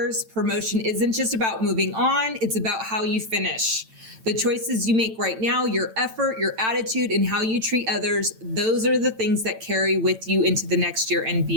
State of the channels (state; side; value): late; left; 9.0 ms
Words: Promotion isn't just about moving on, it's about how you finish. The choices you make right now, your effort, your attitude, and how you treat others, those are the things that carry with you into the next year and